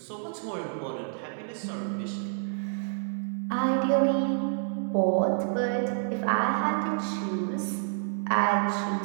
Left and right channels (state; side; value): silent; left; digital silence